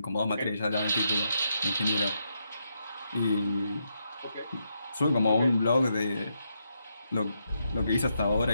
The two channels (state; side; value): inverted; both; correlation -0.81